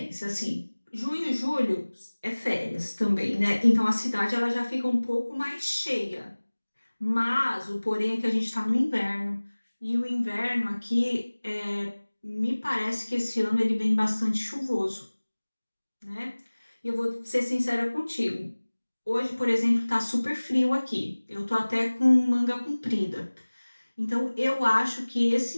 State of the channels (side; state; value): both; inverted; correlation -1.00